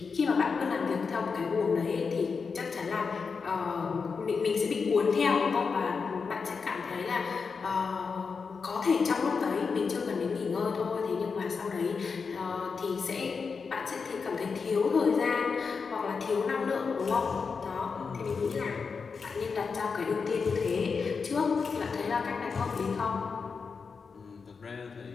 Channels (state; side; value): quieter; right; 5.2 dB